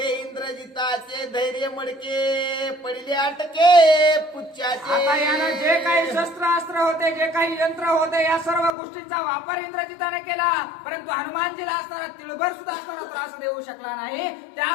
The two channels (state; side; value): drops out; right; at 8.8 s